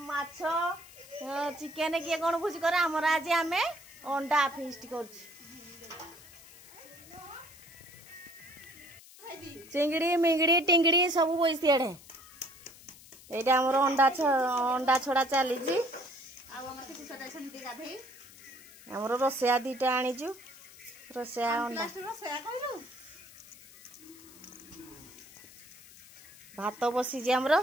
माछ चिकन किए कोन भुज करे हमर आज आमे अंडा फीस्ट करछु। चिंगड़ी मिंगड़ी टिंगड़ी सब बइसी एडे एटा हमर अंडा छड़ा चली जी हमर रोसया दीटा आनीचु रोसया अंडा भात बसी जे हमर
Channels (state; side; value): noise; left; hiss, 20 dB below the sound